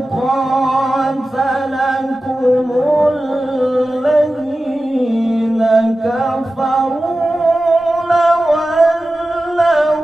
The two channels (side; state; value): both; normal; correlation 0.94